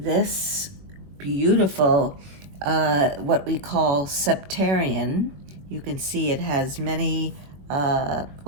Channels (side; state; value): left; late; 21 ms